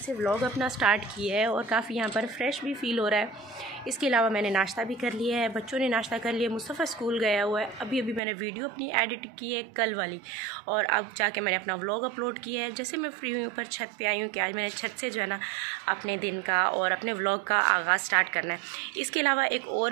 व्लॉग अपना स्टार्ट किया है और काफ़ी यहाँ पर फ्रेश भी फील हो रहा है। इसके अलावा मैंने नाश्ता भी कर लिया है, बच्चों ने नाश्ता कर लिया, मुस्तफ़ा स्कूल गया हुआ है। अभी मैंने वीडियो अपनी एडिट की है कल वाली, और अब जाके मैंने अपना व्लॉग अपलोड किया है। जैसे मैं फ्री हुई ऊपर छत पे आई हूँ कि आज मैंने छत से जो है ना अपने दिन का और अपने व्लॉग का आगाज़ स्टार्ट करना है। इसके अलावा एक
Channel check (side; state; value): left; drops out; at 8.2 s